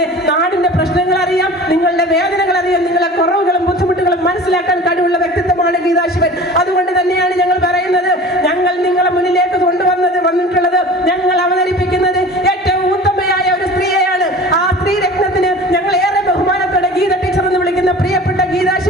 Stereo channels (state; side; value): normal; both; correlation 0.39